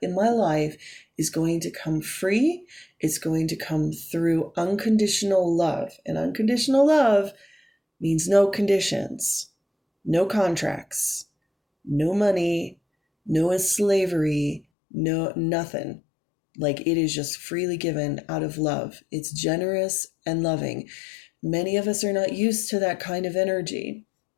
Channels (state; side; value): drops out; right; at 14.6 s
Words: in my life is going to come free. It's going to come through unconditional love. And unconditional love means no conditions, no contracts, no money, no slavery, no nothing. Like, it is just freely given out of love. It's generous and loving. Many of us are not used to that kind of energy.